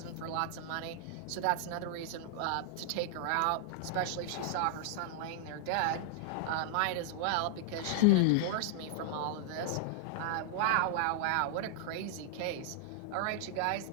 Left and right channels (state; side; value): different; both; correlation -0.01